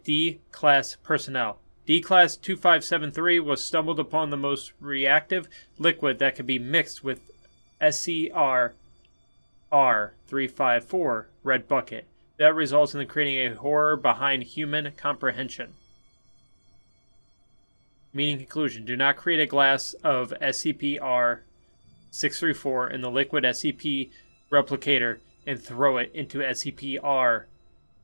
D-Class personnel. D-Class 2573 was stumbled upon the most reactive liquid that could be mixed with SCR R354 red bucket. That results in creating a horror behind human comprehension. Meaning conclusion. Do not create a glass of SCP-R634 in the liquid SCP replicator and throw it into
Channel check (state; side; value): inverted; both; correlation -1.00